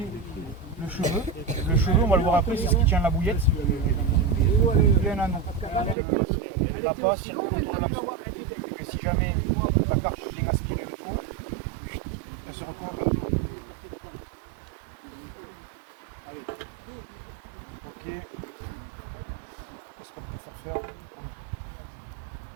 le cheveu. Le cheveu, on va le voir après, c'est ce qui tient la bouillette. Il y a un anneau. La passe circule autour de l'hameçon. Et si jamais la carpe vient aspirer le tour, elle se retrouve en plein tour. Ok. Qu'est-ce qu'on peut faire?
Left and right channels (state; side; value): drops out; left; at 6.0 s